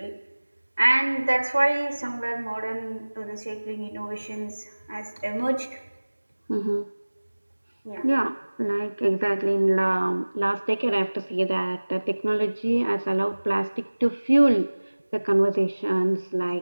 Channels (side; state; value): both; inverted; correlation -1.00